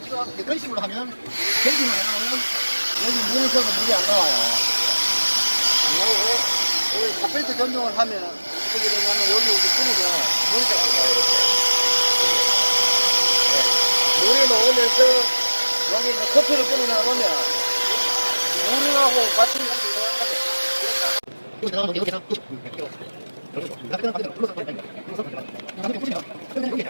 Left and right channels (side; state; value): both; inverted; correlation -1.00